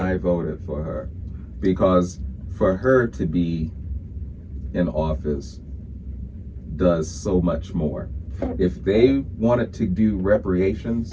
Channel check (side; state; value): both; identical; correlation 1.00